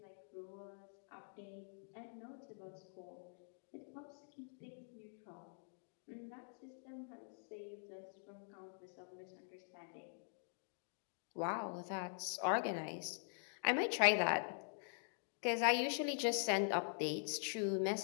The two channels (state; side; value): silent; right; digital silence